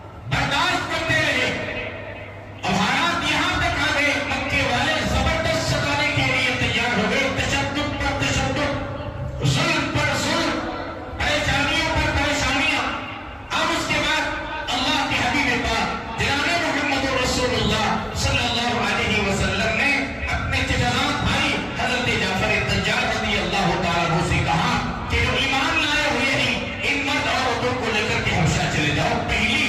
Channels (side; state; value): both; identical; correlation 1.00